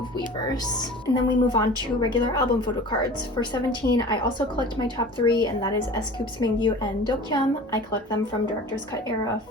Weverse. And then we move on to regular album photo cards. For 17, I also collect my top 3, and that is S.Coups Mingyu and Dokyeom. I collect them from Director's Cut era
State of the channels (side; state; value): both; normal; correlation 0.40